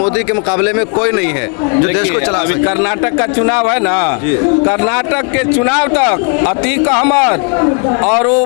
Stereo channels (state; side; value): quieter; right; 39.0 dB